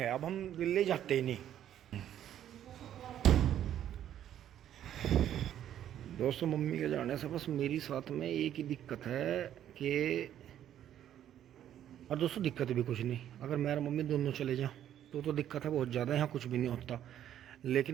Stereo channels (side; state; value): left; quieter; 10.9 dB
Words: अब हम दिल्ली जाते ही नहीं। दोस्तों मम्मी के जाने से बस मेरी साथ में एक ही दिक्कत है कि, और दोस्तों दिक्कत भी कुछ नहीं, अगर मैं और मम्मी दोनों चले जाओ तो दिक्कत है बहुत ज़्यादा, यहाँ कुछ भी नहीं होता।